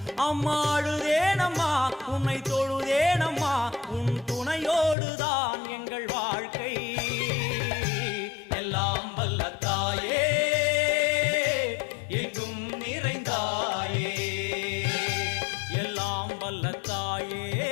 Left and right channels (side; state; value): right; drops out; at 5.0 s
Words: அம்மாடுதேனம்மா உன்னை தொழுதேனம்மா, உன் துணையோடுதான் எங்கள் வாழ்க்கை. எல்லாம் வல்ல தாயே எங்கும் நிறைந்தாயே, எல்லாம் வல்ல தாயே